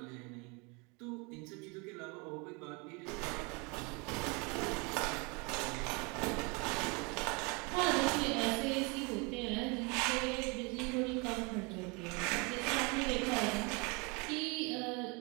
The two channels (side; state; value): left; quieter; 29.9 dB